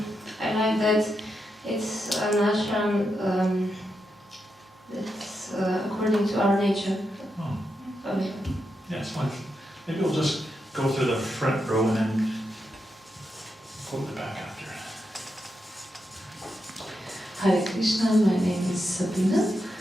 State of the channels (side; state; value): both; normal; correlation 0.85